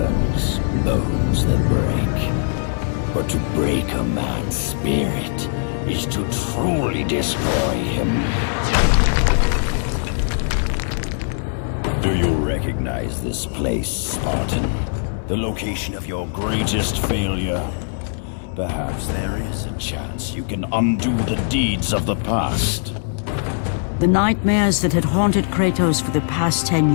bones that break. But to break a man's spirit is to truly destroy him. Do you recognize this place, Spartan? The location of your greatest failure? Perhaps there is a chance you can undo the deeds of the past. The nightmares that had haunted Kratos for the past 10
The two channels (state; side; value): silent; right; digital silence